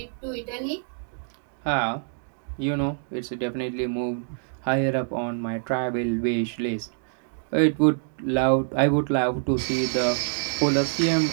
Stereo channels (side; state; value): left; silent; digital silence